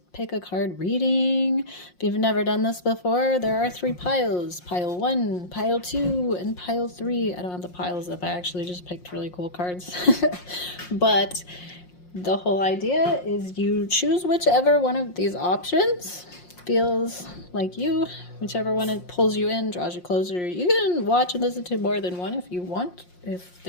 Pick a Card reading. If you've never done this before, there are 3 piles. Pile 1, Pile 2, and Pile 3. I don't have the piles up. I actually just picked really cool cards. But the whole idea is you choose whichever one of these options feels like you, whichever one it pulls you in, draws you closer. You can watch and listen to more than one if you want, if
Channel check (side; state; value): right; late; 5.6 ms